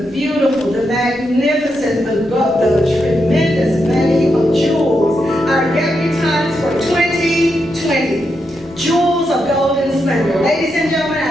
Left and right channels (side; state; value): both; normal; correlation 0.84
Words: beautiful, the magnificent, the tremendous many of jewels, our debutantes for 2020. Jewels of golden splendor. Ladies and gentlemen,